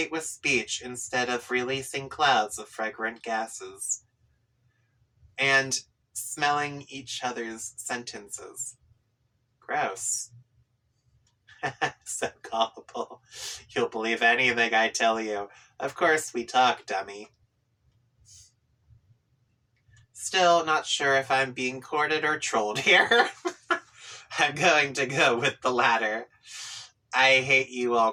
with speech instead of releasing clouds of fragrant gases. And smelling each other's sentences. Gross. So gullible. You'll believe anything I tell you. Of course we talk, dummy. Still not sure if I'm being courted or trolled here. I'm going to go with the latter. I hate you all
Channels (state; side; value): identical; both; correlation 1.00